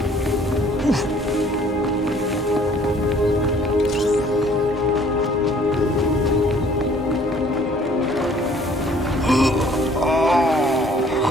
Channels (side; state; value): both; normal; correlation 0.57